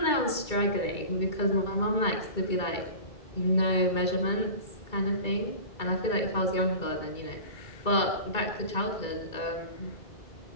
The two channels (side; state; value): right; late; 2.3 ms